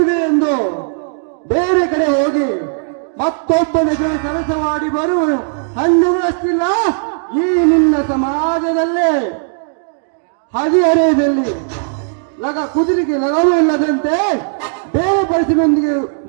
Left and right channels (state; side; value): silent; left; digital silence